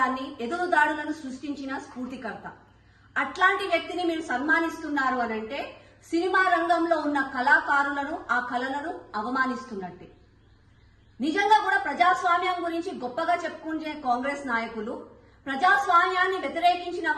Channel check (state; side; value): identical; both; correlation 1.00